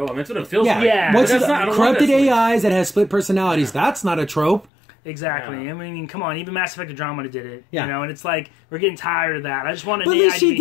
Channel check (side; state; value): right; drops out; at 4.7 s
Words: I mean, that's what it feels like. Yeah. What's corrupted AIs that has split personalities? That's not a trope. Exactly. Yeah. I mean, come on. Even Mass Effect Andromeda did it. Yeah. And it's like we're getting tired of that. I just want to. But at least she